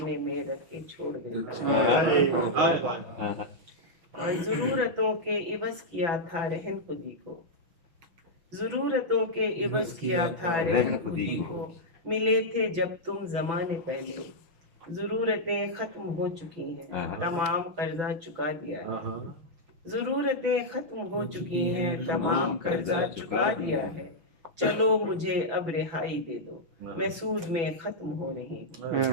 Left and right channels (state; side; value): late; left; 6.0 ms